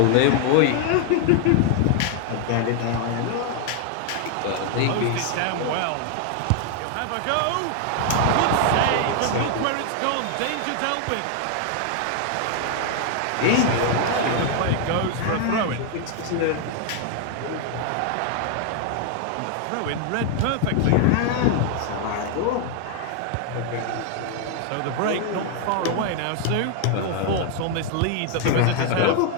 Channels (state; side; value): different; both; correlation 0.00